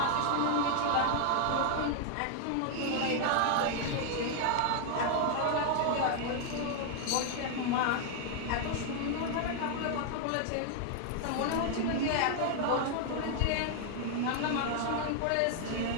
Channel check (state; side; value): different; both; correlation 0.00